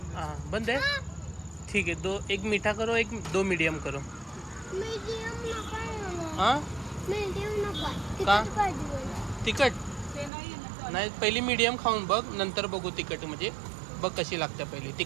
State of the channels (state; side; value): drops out; left; at 10.3 s